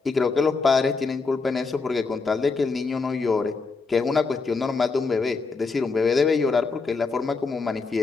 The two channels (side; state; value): right; quieter; 4.3 dB